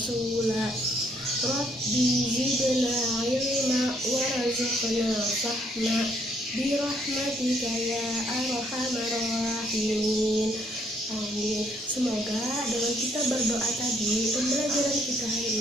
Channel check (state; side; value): normal; both; correlation 0.69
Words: Rabbi zidna ilma warzuqna fahma birahmatika ya arhamar rahimin. Amin. Semoga dengan kita berdoa tadi, pembelajaran kita hari